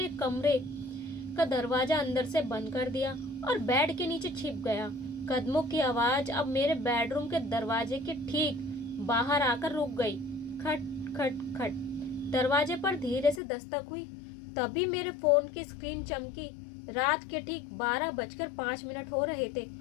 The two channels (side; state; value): right; drops out; at 13.4 s